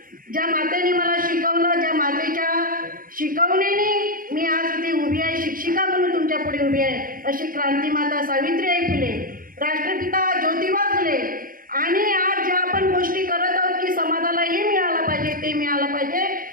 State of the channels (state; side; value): late; left; 0.41 ms